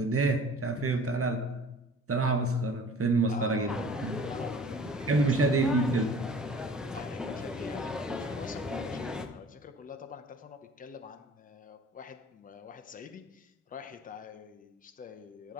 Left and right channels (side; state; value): both; normal; correlation 0.47